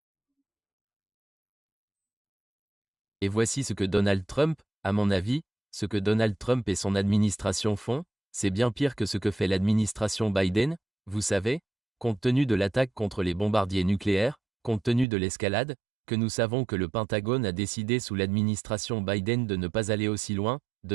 Et voici ce que Donald Trump, à mon avis, ce que Donald Trump et son administration font, c'est bien pire que ce que fait l'administration Biden, vous savez, compte tenu de l'attaque contre les bombardiers nucléaires, compte tenu de l'escalade, que nous savons que le Pentagone a décidé sous l'administration Biden de ne pas aller aussi loin,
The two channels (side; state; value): left; drops out; at 15.1 s